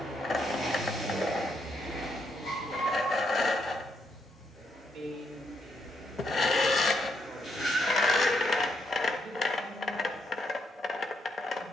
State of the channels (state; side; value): normal; both; correlation 0.78